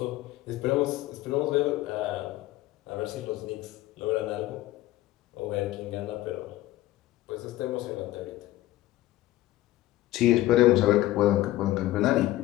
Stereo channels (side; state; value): right; quieter; 16.0 dB